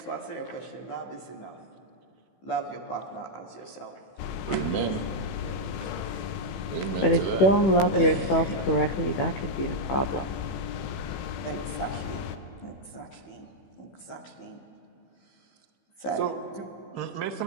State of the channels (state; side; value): late; right; 15 ms